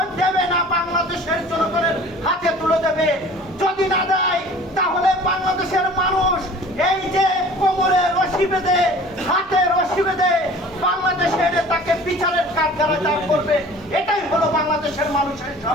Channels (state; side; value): noise; right; hum, 29 dB below the sound